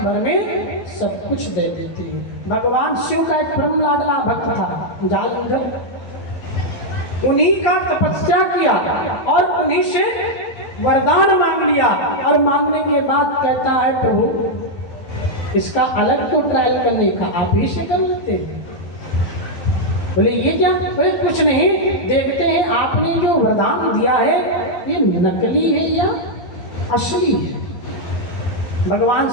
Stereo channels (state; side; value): late; right; 11 ms